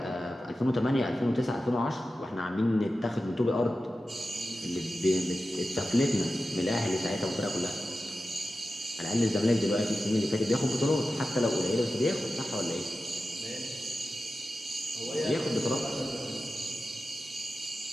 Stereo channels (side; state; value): both; normal; correlation 0.93